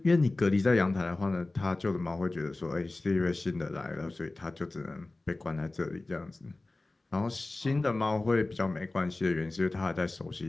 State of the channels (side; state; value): right; quieter; 3.0 dB